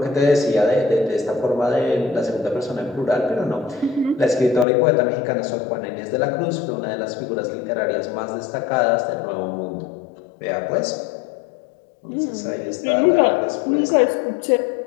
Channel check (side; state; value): right; drops out; at 4.7 s